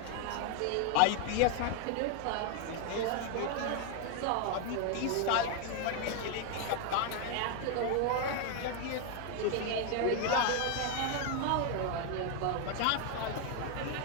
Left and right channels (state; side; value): different; both; correlation 0.00